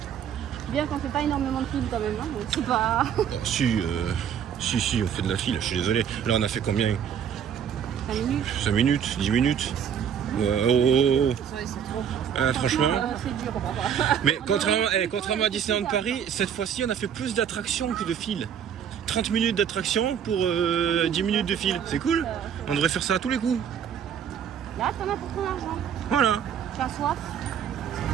Bien qu'on fait pas énormément de films quand même, hein, donc c'est pas... Si, on fait de la file, je suis désolé. Là on a fait combien? 5 minutes. 5 minutes, 10 minutes. Ouais, franchement. C'est dur. Mais contrairement à Disneyland Paris, cette fois-ci on a fait plus d'attractions que de fil. 30 minutes d'attraction pour 10 minutes de fil. C'est cool. On devrait faire ça à tous les coups. Là, t'en as pour ton argent. Voilà. Tu as soif?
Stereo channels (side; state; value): left; quieter; 8.4 dB